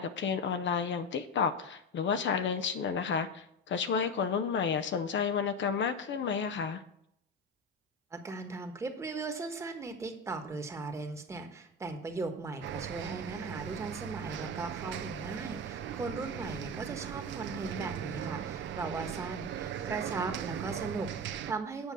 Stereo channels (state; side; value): normal; both; correlation 0.19